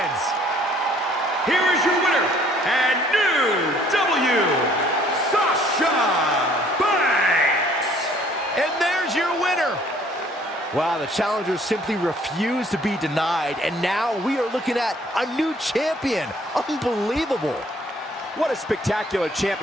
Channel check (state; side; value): normal; both; correlation 0.59